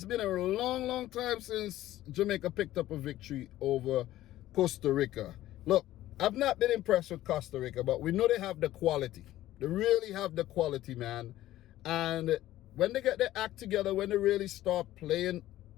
been a long time since Jamaica picked up a victory over Costa Rica. Look, I've not been impressed with Costa Rica, but we know they have the quality. They really have the quality, man. And when they get their act together, when they really start playing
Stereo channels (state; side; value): quieter; right; 14.7 dB